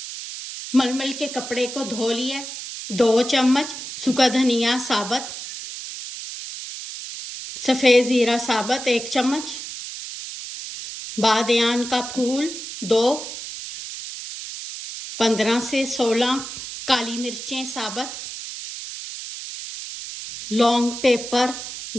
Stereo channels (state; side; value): noise; right; hiss, 9 dB below the sound